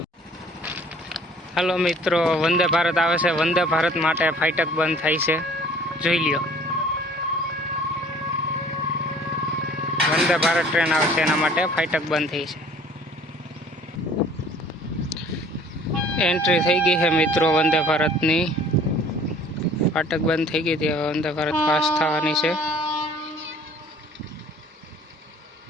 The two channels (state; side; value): normal; both; correlation 0.52